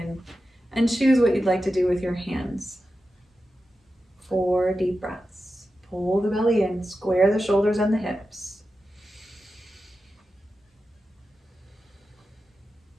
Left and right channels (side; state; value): both; normal; correlation 0.92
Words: and choose what you'd like to do with your hands. 4 deep breaths. Pull the belly in, square the shoulders and the hips.